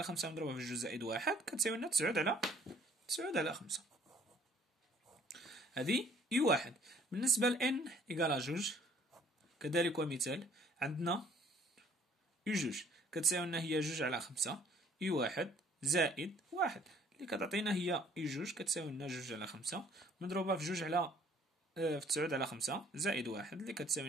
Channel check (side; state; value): both; normal; correlation 0.58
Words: خمسة مضروبة في جوج زائد واحد كتساوي لنا تسعود على خمسة. هذه اي واحد. بالنسبة ل n إيكالا جوج كذلك ومثال، عندنا اي جوج كتساوي لنا هي جوج على خمسة اي واحد زائد واحد اللي كتعطينا هي اي جوج كتساوي لنا جوج على خمسة مضروبة في جوج على في تسعود على خمسة زائد واحد اللي كتساوي